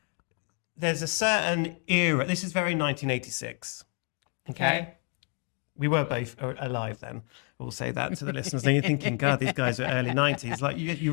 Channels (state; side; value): quieter; right; 39.7 dB